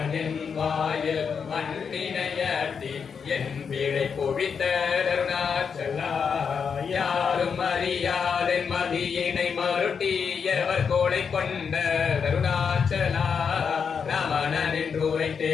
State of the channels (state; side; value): quieter; right; 6.3 dB